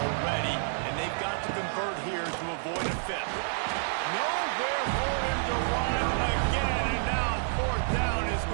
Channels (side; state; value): left; silent; digital silence